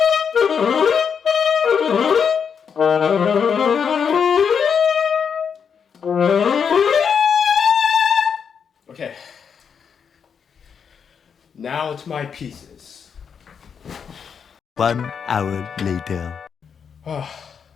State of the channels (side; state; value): right; quieter; 6.8 dB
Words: Okay, now to my pieces. 1 hour later. I